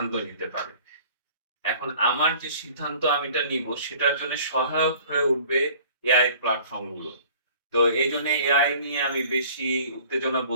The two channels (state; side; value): inverted; both; correlation -0.49